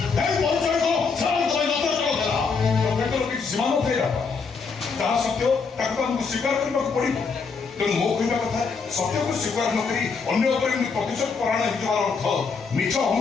ସୀମା ନଥାଏ ତାହା ସତ୍ୟ ତାକୁ ଆମକୁ ସ୍ୱୀକାର କରିବାକୁ ପଡ଼ିବ ତେଣୁ ମୋ କହିବା କଥା ସତ୍ୟକୁ ସ୍ୱୀକାର ନ କରି ଅନ୍ୟ ଉପରେ ପ୍ରତିଶୋଧ ପରାୟଣ ହେଇଯିବାର ଅର୍ଥ ମିଛ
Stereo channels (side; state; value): right; quieter; 5.1 dB